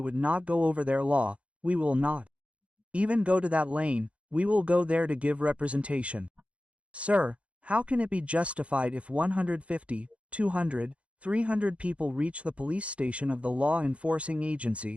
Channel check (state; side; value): late; left; 0.062 ms